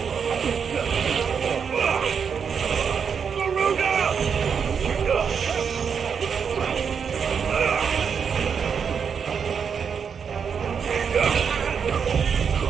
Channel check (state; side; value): quieter; left; 6.6 dB